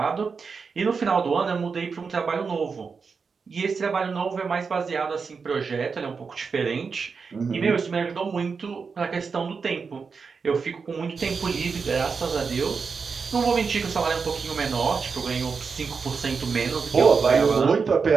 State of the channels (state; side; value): quieter; left; 5.3 dB